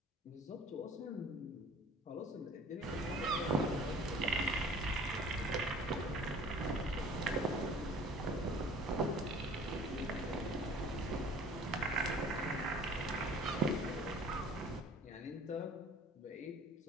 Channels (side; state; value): both; normal; correlation 0.49